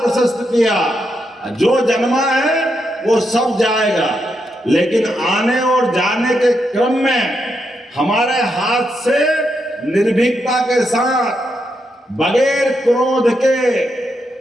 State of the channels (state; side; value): normal; both; correlation 0.82